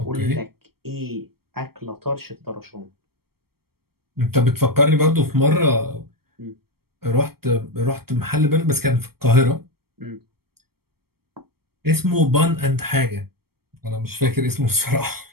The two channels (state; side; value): late; left; 0.95 ms